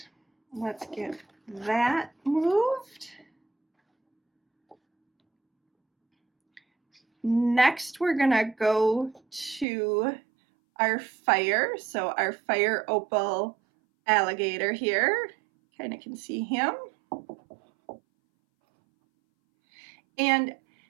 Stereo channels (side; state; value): left; drops out; at 9.7 s